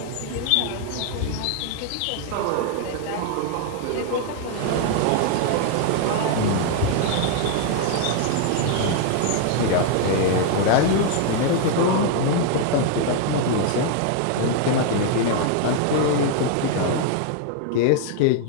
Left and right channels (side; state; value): both; different; correlation 0.00